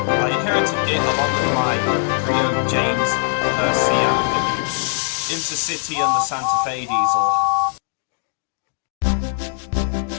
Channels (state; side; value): silent; right; digital silence